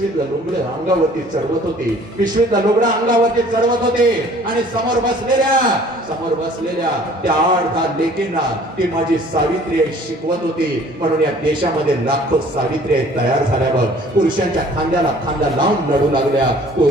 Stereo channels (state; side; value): normal; both; correlation 0.53